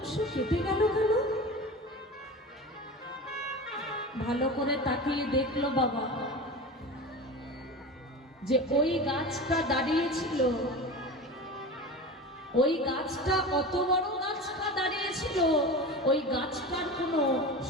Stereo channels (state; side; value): normal; both; correlation 0.30